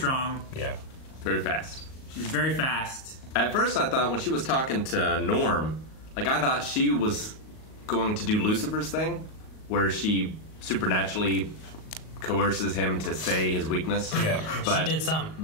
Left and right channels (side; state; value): right; late; 38 ms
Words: Yeah. Very fast. She's very fast. At first, I thought when she was talking to Norm, like, I thought she was going to do Lucifer's thing, where she supernaturally coerces him to say his weakness. Yeah. But, she did some.